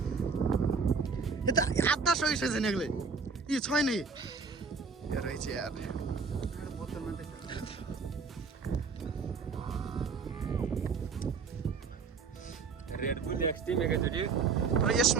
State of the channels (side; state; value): left; quieter; 5.0 dB